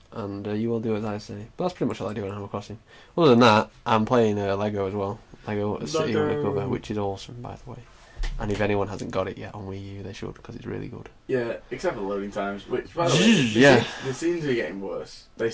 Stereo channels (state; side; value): identical; both; correlation 1.00